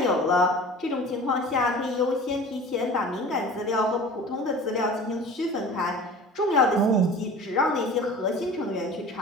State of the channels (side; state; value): both; normal; correlation 0.40